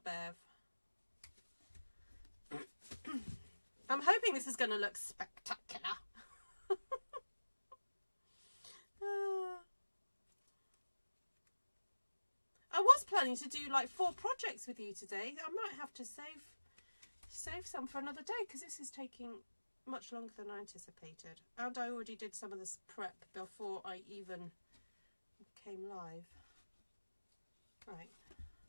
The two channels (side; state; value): both; inverted; correlation -1.00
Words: I'm hoping this is going to look spectacular. I was planning to do like 4 projects with you today. I might have to save some for another day, because this is taking much longer than I anticipated. And I already did some of this prep before I even came live. Right.